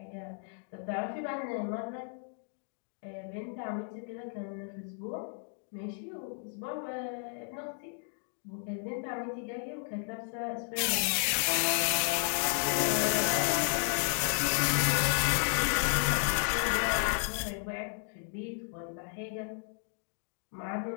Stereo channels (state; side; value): silent; right; 56 dB below the other